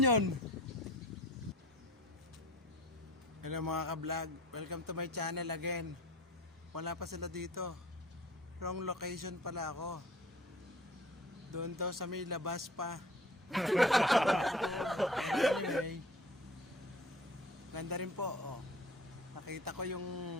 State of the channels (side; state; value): both; normal; correlation 0.45